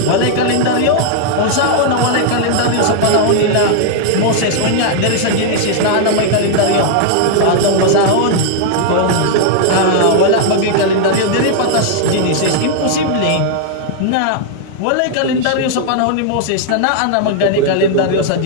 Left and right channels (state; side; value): different; both; correlation 0.00